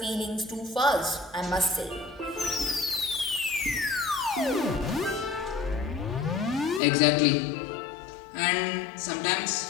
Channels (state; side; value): drops out; right; at 6.8 s